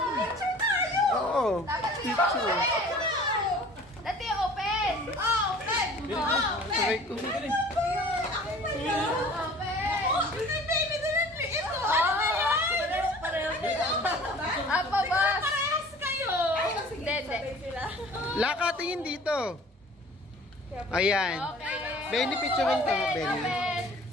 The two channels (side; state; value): both; normal; correlation 0.47